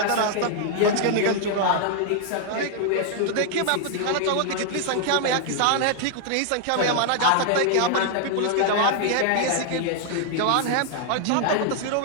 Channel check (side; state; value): both; different; correlation 0.00